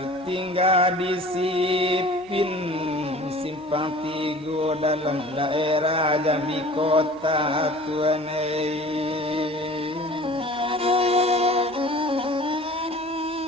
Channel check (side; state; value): both; normal; correlation 0.44